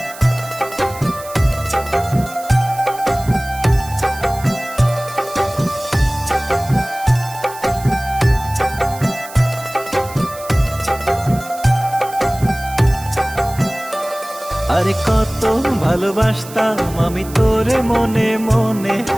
আরে কত ভালোবাসতাম আমি তোরে মনে মনে,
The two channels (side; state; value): right; noise; hiss, 16 dB below the sound